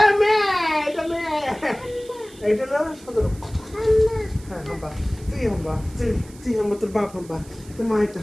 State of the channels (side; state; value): right; noise; hiss, 22 dB below the sound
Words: মেয়ে, এটা মেয়ে। এটা হলো সদর, হ্যাঁ হাম্বা, তুই হাম্বা, তুই হাম্বা, তোর বাপ হাম্বা, তোর মা এটা